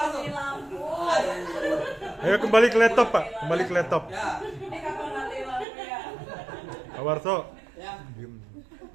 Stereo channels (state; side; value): drops out; left; at 5.7 s